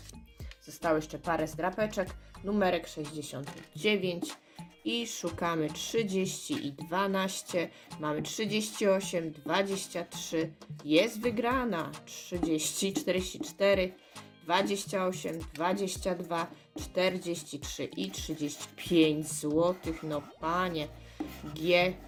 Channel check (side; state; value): both; identical; correlation 1.00